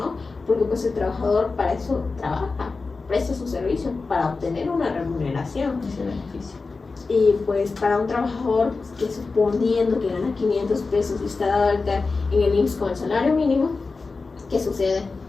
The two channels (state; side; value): quieter; right; 4.1 dB